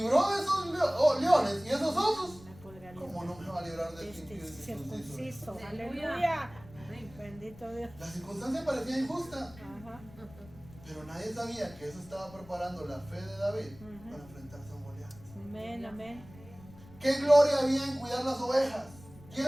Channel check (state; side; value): noise; left; rumble, 20 dB below the sound